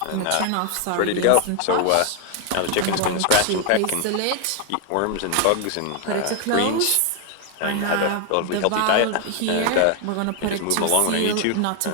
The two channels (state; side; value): different; both; correlation 0.00